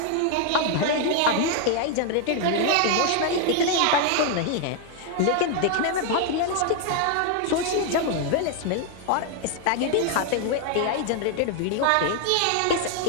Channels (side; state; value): both; different; correlation 0.00